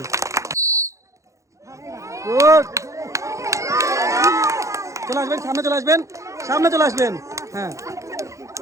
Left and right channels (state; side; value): late; left; 0.15 ms